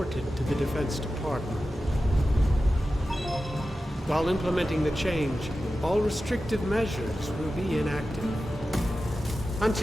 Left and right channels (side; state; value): both; normal; correlation 0.93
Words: to the Defense Department. While implementing the change, all restrictive measures will be inactive.